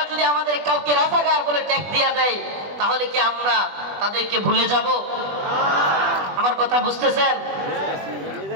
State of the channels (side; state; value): left; late; 21 ms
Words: কাউকে রাজাকার বলে ট্যাগ দিয়া দেয়, তাহলে কি আমরা তাদেরকে ভুলে যাব? আমার কথা বুঝতেছেন?